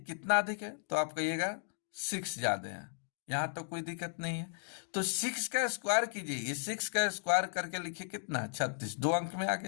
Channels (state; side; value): silent; right; digital silence